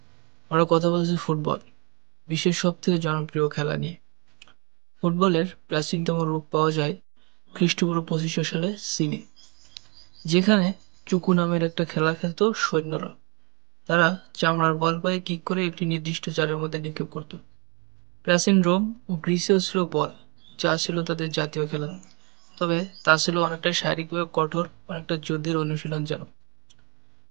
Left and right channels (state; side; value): quieter; left; 30.4 dB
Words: আমরা কথা বলছি ফুটবল, বিশ্বের সব থেকে জনপ্রিয় খেলা নিয়ে। ফুটবলের প্রাচীনতম রূপ পাওয়া যায় খ্রিস্টপূর্ব 2500 সালে চীনে, যেখানে চুকু নামের একটা খেলা খেলতো সৈন্যরা। তারা চামড়ার বল পায়ে কিক করে একটি নির্দিষ্ট জালের মধ্যে নিক্ষেপ করত। প্রাচীন রোম ও গ্রিসেও ছিল বল, যা ছিল তাদের জাতীয় খেলা। তবে তা ছিল অনেকটা শারীরিকভাবে কঠোর, অনেকটা যুদ্ধের অনুশীলন যেন।